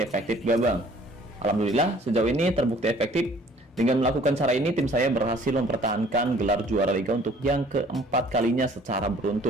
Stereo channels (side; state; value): both; normal; correlation 0.55